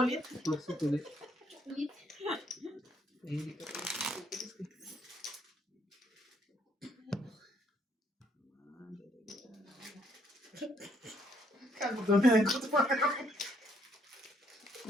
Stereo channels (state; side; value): normal; both; correlation 0.68